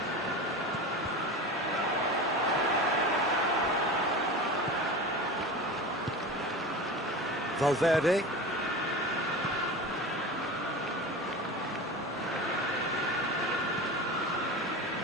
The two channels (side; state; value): both; normal; correlation 0.30